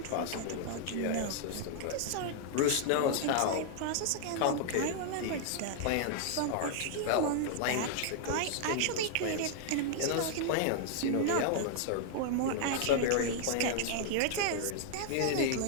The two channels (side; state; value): both; different; correlation -0.01